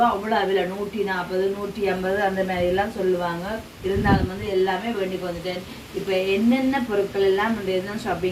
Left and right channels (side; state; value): both; identical; correlation 1.00